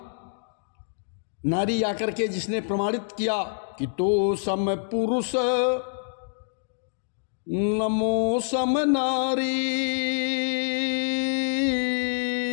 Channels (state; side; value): silent; right; digital silence